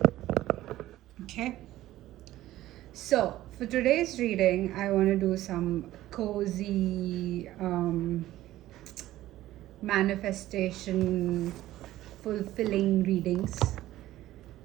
Okay. So, for today's reading, I want to do some cozy manifestation fulfilling readings.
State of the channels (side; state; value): left; quieter; 15.0 dB